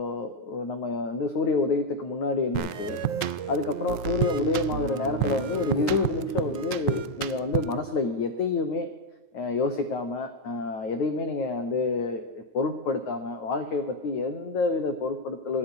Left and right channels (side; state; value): right; late; 9.4 ms